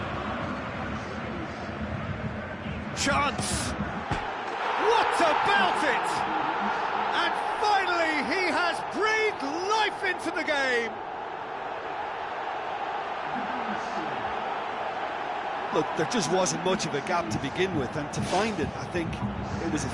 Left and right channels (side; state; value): both; identical; correlation 1.00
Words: Chance! What about it? And finally he has breathed life into the game. Look, there just wasn't much of a gap to begin with, and to find it, I think it was a